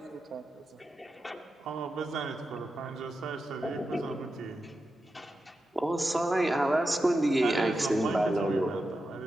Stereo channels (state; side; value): normal; both; correlation 0.90